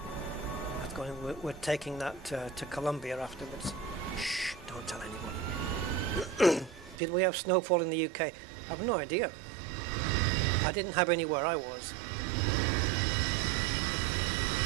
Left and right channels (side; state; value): left; drops out; at 7.0 s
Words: That's going. We're taking that to Colombia afterwards. Shh, don't tell anyone. Did we have snowfall in the UK? I have no idea. I didn't have any where I was.